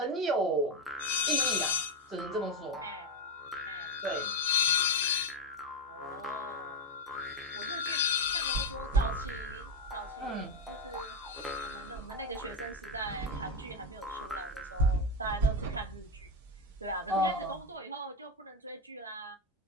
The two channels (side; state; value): both; normal; correlation 0.09